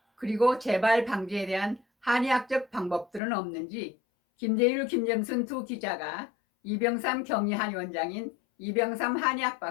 그리고 재발 방지에 대한 한의학적 방법들은 없는지 김재율, 김정순 두 기자가 이병삼 경희한의원장인 이병삼 한의학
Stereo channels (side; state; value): right; drops out; at 3.2 s